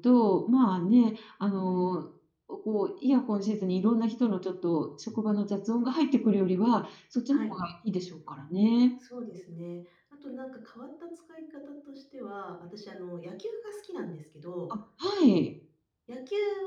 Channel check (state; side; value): identical; both; correlation 1.00